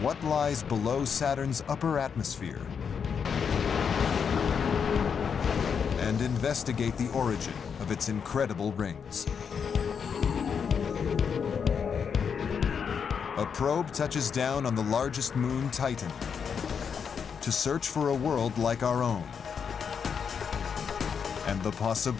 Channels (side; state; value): right; quieter; 6.7 dB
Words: what lies below Saturn's upper atmosphere and investigate the origin of its incredible rings. A probe touches down on the largest moon, Titan, to search for a world like our own and the